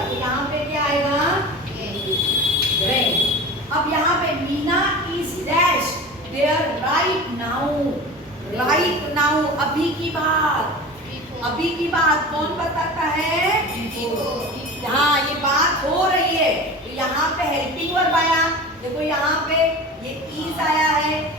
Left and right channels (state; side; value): normal; both; correlation 0.34